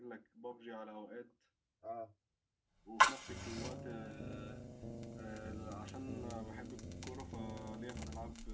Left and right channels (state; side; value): identical; both; correlation 1.00